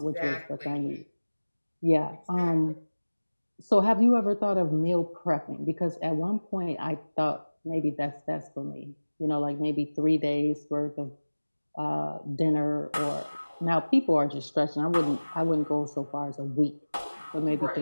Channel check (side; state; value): both; inverted; correlation -1.00